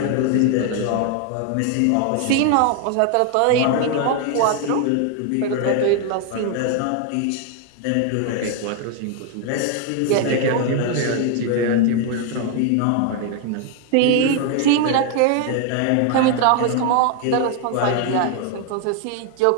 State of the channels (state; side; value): different; both; correlation 0.01